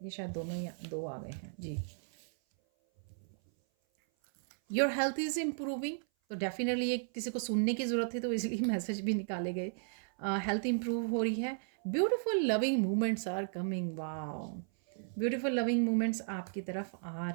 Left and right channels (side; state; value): left; silent; 55 dB below the other